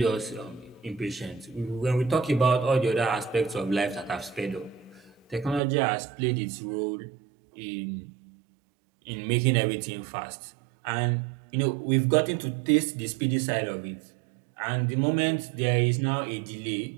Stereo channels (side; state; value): left; drops out; at 5.6 s